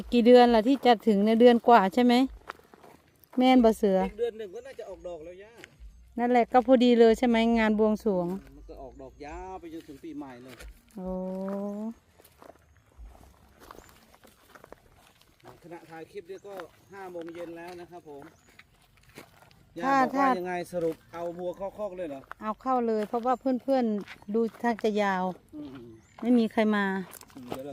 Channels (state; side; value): identical; both; correlation 1.00